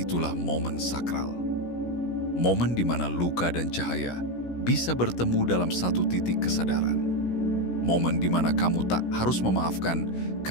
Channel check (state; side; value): late; right; 16 ms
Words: momen sakral. Momen di mana luka dan cahaya bisa bertemu dalam satu titik kesadaran. Momen di mana kamu tak harus memaafkan